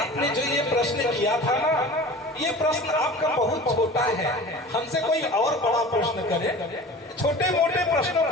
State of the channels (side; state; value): both; normal; correlation 0.39